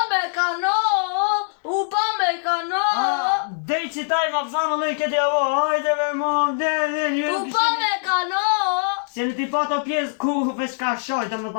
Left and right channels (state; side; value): silent; right; digital silence